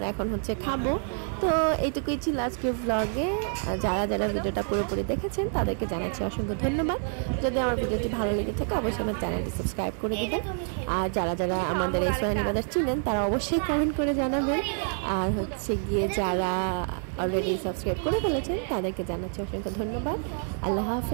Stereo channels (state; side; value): silent; left; 56 dB below the other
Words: এখন খাবো। তো এইটুকুই ছিল আজকে ব্লগে। যারা ভিডিওটা পুরোপুরি দেখেছেন তাদেরকে জানাচ্ছি অসংখ্য ধন্যবাদ। যদি আমার ভিডিওটি ভালো লেগে থাকে অবশ্যই আমার চ্যানেলটি সাবস্ক্রাইব করে দিবেন, আর যারা আমাদের এই সোয়ানি বাজার চিনেন তারা অবশ্যই কমেন্ট করে জানাবেন, আর গিয়ে যারা অলরেডি সাবস্ক্রাইব করে ফেলেছেন তাদেরকে জানাচ্ছি অসংখ্য ধন্যবাদ। আল্লাহ